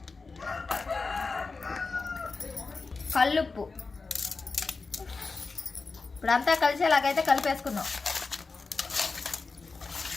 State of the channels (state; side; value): quieter; right; 4.2 dB